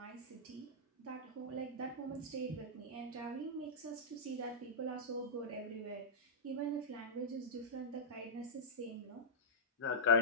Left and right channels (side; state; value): both; normal; correlation -0.12